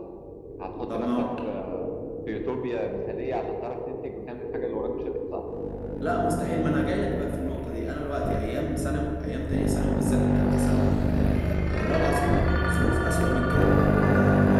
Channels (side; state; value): both; identical; correlation 1.00